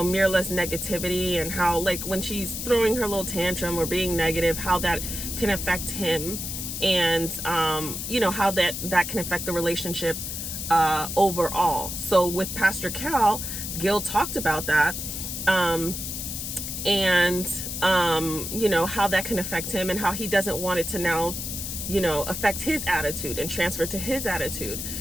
negativity, and how when she's throwing her little tantrum or being negative, how that can affect him, and how that can affect the relationship overall. So with Pastor Cal, Gil talked about that, and how that can affect him and how he doesn't want it to now affect his attitude and transfer to his attitude.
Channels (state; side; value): noise; left; hiss, 5 dB below the sound